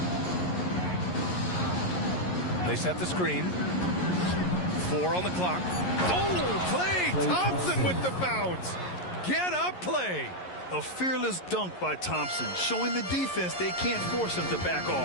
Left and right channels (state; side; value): late; right; 11 ms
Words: They set the screen. 4 on the clock. Oh, Klay Thompson with the bounce. Get up, Klay. A fearless dunk by Thompson, showing the defense they can't force him to back